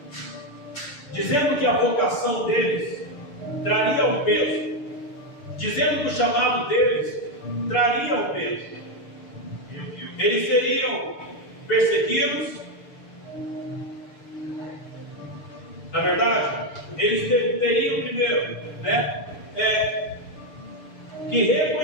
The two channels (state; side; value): late; right; 6.7 ms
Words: dizendo que a vocação deles traria um peso, dizendo que o chamado deles traria um peso. Eles seriam perseguidos. Na verdade, eles teriam primeiro, que